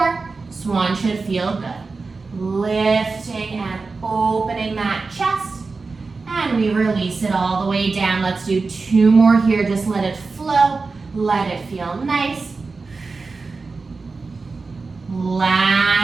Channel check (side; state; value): left; quieter; 4.1 dB